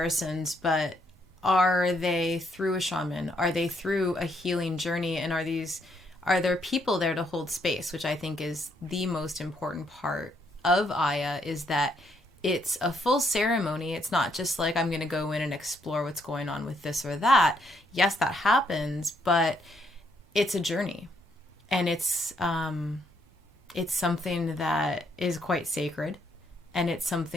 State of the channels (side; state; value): both; normal; correlation 0.73